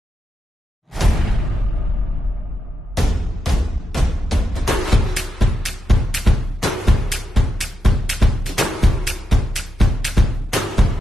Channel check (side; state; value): both; normal; correlation 0.84